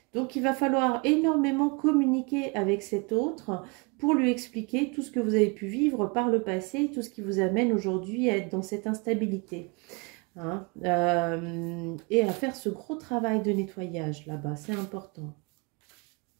Donc, il va falloir énormément communiquer avec cet autre pour lui expliquer tout ce que vous avez pu vivre par le passé, tout ce qui vous amène aujourd'hui à être dans cette instabilité. Hein, et à faire ce gros travail de nettoyage là-bas, c'est important.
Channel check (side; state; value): left; quieter; 30.6 dB